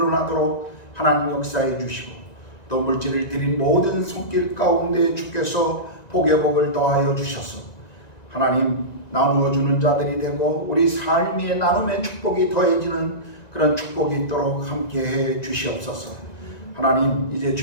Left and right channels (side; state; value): right; late; 1.9 ms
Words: 하나님 역사해 주시고 또 물질을 드린 모든 손길 가운데 주께서 복의 복을 더하여 주셔서 하나님 나누어 주는 자들이 되고 우리 삶의 나눔의 축복이 더해지는 그런 축복이 있도록 함께해 주시옵소서. 하나님, 이제